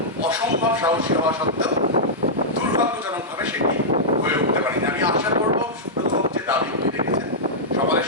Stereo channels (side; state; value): both; normal; correlation -0.10